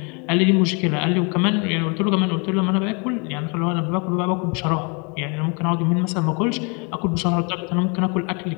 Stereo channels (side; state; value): right; quieter; 33.1 dB